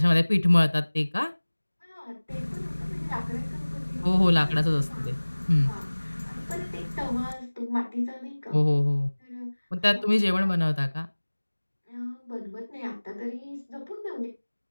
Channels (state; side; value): inverted; both; correlation -1.00